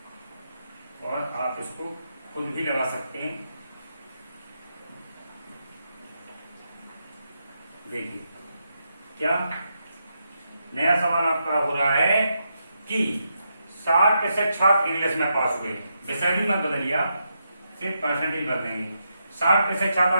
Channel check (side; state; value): both; inverted; correlation -0.83